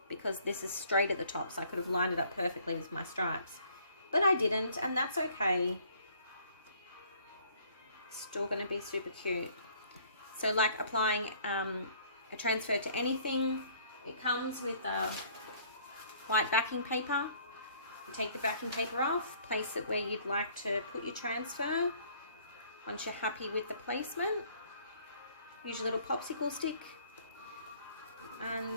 because this is straight at the top, so I could have lined it up perfectly with my stripes, but I didn't, and that's okay. Still going to be super cute. So like applying a transfer to anything, it comes with white backing paper. You take the backing paper off, place it where you'd like to put your transfer. Once you're happy with the placement, use your little popsicle stick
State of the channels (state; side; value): inverted; both; correlation -0.58